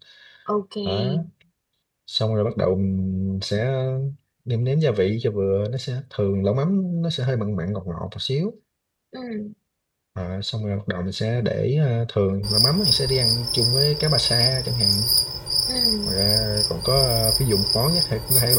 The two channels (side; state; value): both; identical; correlation 1.00